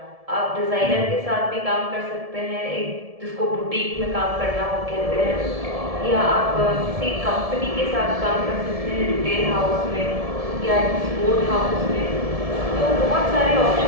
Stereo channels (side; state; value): left; late; 1.7 ms